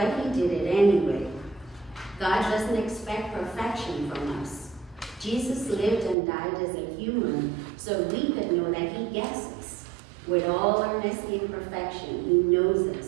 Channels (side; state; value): left; drops out; at 6.2 s